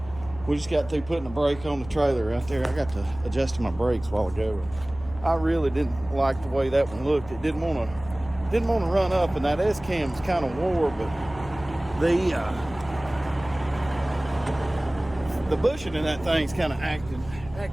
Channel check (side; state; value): left; noise; hum, 17 dB below the sound